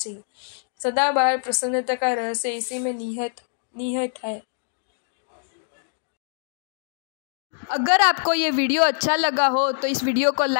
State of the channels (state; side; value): silent; right; digital silence